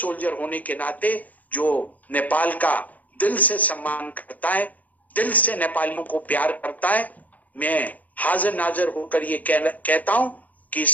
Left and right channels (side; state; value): right; late; 0.079 ms